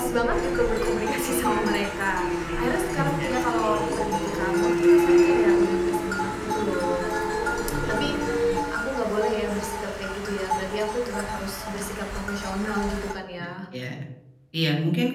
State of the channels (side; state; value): both; identical; correlation 1.00